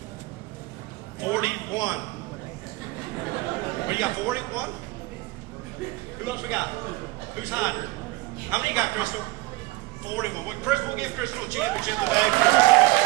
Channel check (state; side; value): quieter; left; 20.7 dB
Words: 41. What do you got, 41? Who else we got? Who's hiding? How many you got, Crystal? 41. Well, Crystal, we'll give Crystal a championship today.